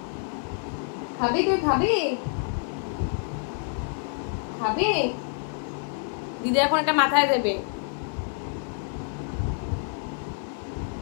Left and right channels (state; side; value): silent; right; 60 dB below the other